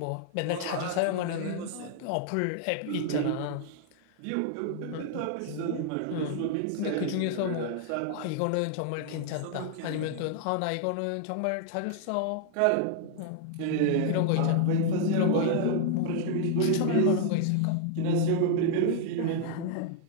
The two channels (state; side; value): different; both; correlation 0.00